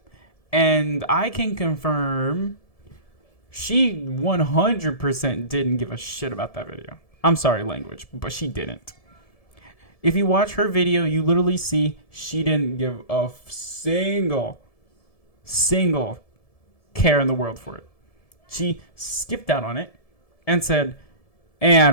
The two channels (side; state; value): right; late; 1.7 ms